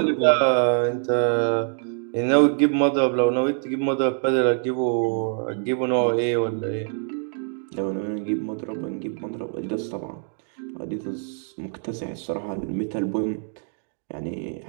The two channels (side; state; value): left; silent; 57 dB below the other